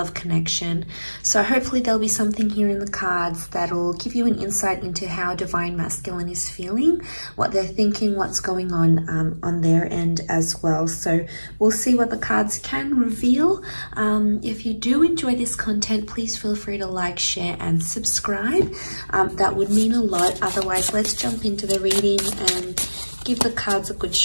connection. So hopefully there'll be something here in the cards that'll give you an insight into how Divine Masculine is feeling, what they're thinking, what's going on their end as well. So we'll see what the cards can reveal. If you do enjoy this content, please feel free to like, share, and subscribe. That would mean a lot. Otherwise, let's jump into the reading and give the cards a good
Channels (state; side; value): inverted; both; correlation -1.00